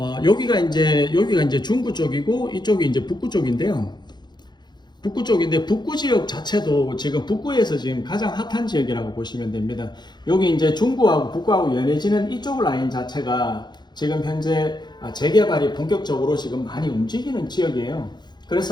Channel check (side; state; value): right; late; 0.21 ms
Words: 여기가 이제 중구 쪽이고 이쪽이 이제 북구 쪽인데요. 북구 쪽인데 북구 지역 자체도 지금 북구에서 지금 가장 핫한 지역이라고 보시면 됩니다. 여기 이제 중구하고 북구하고 연해지는 이쪽 라인 자체가 지금 현재 재개발이 본격적으로 지금 많이 움직이는 지역이에요.